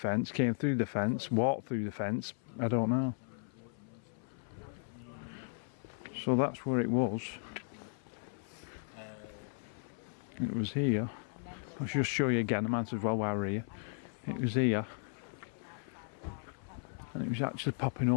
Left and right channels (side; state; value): right; silent; 54 dB below the other